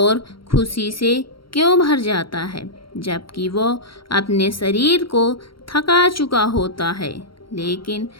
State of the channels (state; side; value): late; right; 0.74 ms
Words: खुशी से क्यों भर जाता है? जबकि वो अपने शरीर को थका चुका होता है। लेकिन